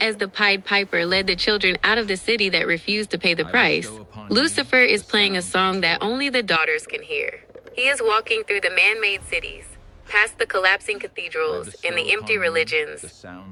the Pied Piper led the children out of the city that refused to pay the price, Lucifer is playing a song that only the daughters can hear. He is walking through the man-made cities, past the collapsing cathedrals and the empty religions,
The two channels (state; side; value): identical; both; correlation 1.00